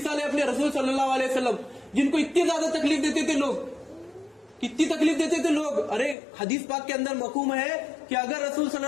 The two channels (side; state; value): right; drops out; at 6.2 s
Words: है अपने रसूल सल्लल्लाहु अलैहि वसल्लम, जिनको इतनी ज्यादा तकलीफ देते थे लोग, कितनी तकलीफ देते थे लोग। अरे हदीस पाक के अंदर मकूम है कि अगर रसूल